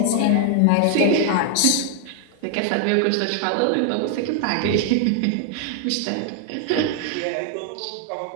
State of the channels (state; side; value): different; both; correlation 0.00